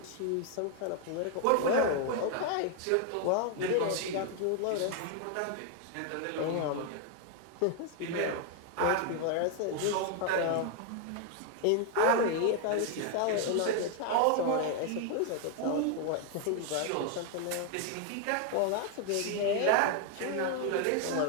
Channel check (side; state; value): both; different; correlation 0.00